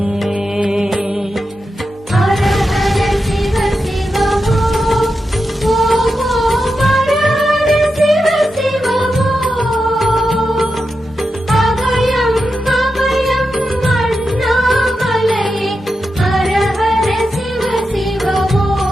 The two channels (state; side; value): normal; both; correlation 0.89